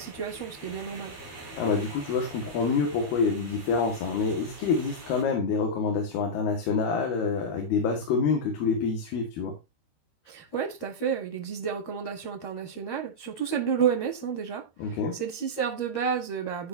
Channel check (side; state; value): right; late; 13 ms